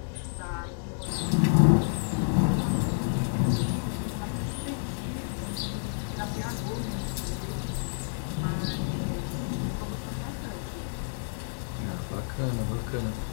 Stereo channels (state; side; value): silent; right; digital silence